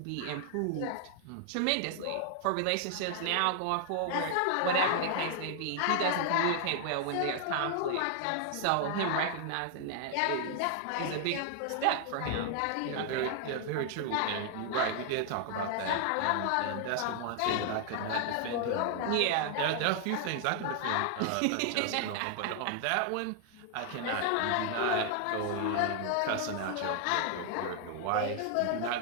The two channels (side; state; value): both; different; correlation 0.00